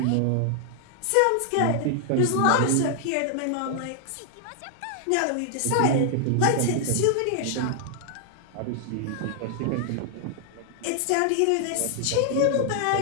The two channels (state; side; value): different; both; correlation 0.00